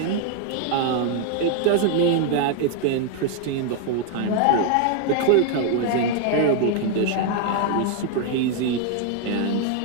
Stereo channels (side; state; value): both; different; correlation 0.00